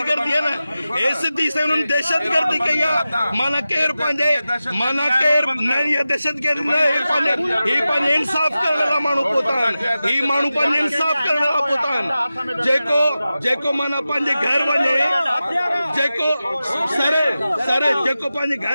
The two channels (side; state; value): both; inverted; correlation -0.94